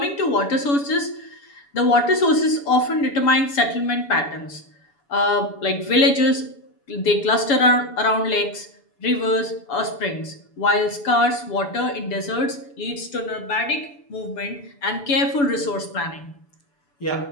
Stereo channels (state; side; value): late; right; 7.0 ms